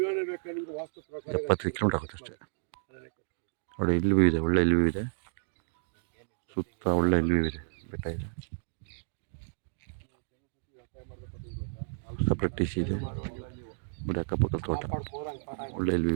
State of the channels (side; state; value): left; silent; digital silence